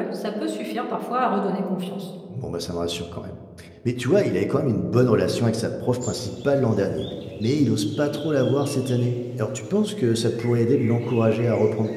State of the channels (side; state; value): both; identical; correlation 1.00